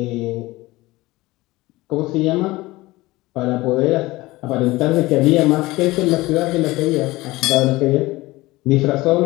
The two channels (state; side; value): quieter; right; 19.7 dB